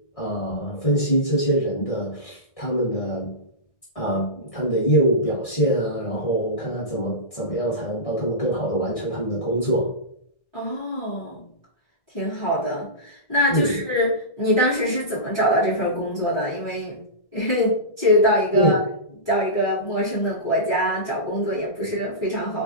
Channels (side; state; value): right; late; 1.6 ms